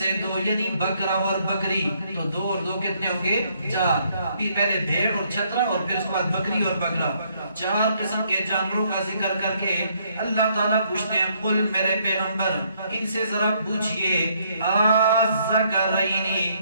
2 یعنی بکرا اور بکری تو 2 اور 2 کتنے ہوں گے 4 پہلے بھیڑ اور چھترا اور پھر اس کے بعد بکری اور بکرا 4 قسم کے جانوروں کا ذکر کر کے اللہ تعالیٰ پوچھتے ہیں قل میرے پیغمبر ان سے ذرا پوچھئے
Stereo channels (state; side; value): inverted; both; correlation -0.70